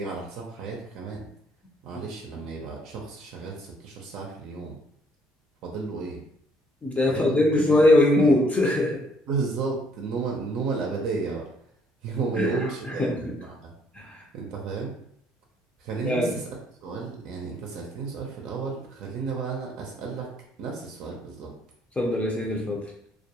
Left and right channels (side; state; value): both; normal; correlation 0.66